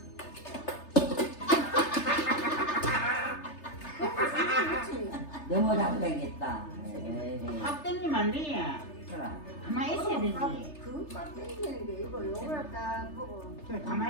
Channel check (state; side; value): late; right; 3.3 ms